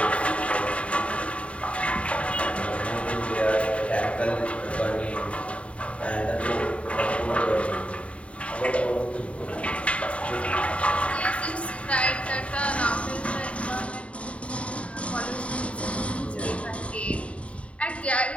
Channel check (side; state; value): right; late; 0.063 ms